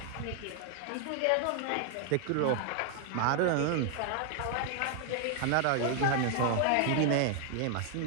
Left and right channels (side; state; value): both; different; correlation 0.00